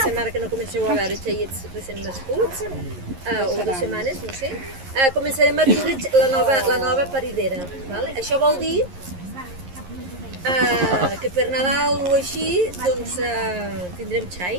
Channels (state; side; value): late; left; 11 ms